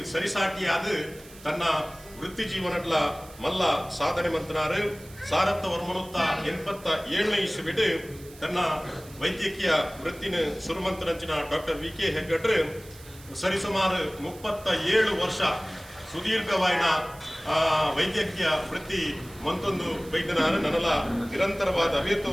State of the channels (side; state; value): right; noise; hiss, 21 dB below the sound